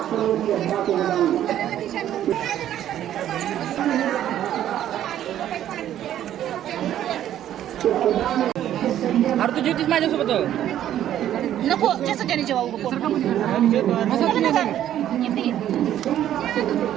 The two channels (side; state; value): left; quieter; 11.5 dB